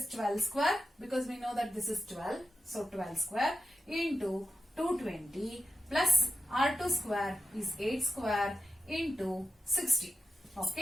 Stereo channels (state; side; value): normal; both; correlation 0.89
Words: 12 square because we know that this is 12. So 12 square into 220 plus R2 square is 8 square into 60.